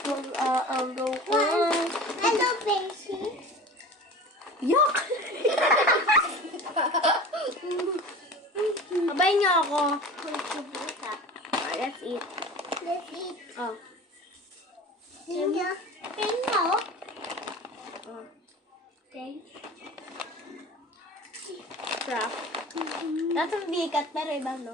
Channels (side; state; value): both; normal; correlation 0.37